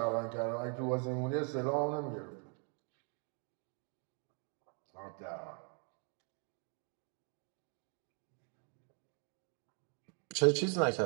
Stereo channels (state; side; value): quieter; left; 39.0 dB